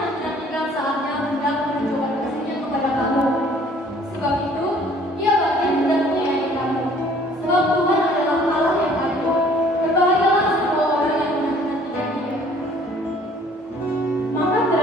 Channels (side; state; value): both; normal; correlation 0.56